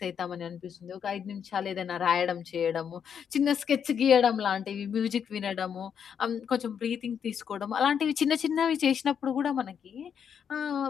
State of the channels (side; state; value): right; quieter; 7.8 dB